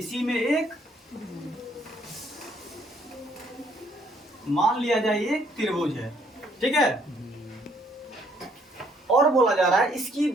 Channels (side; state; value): both; normal; correlation 0.66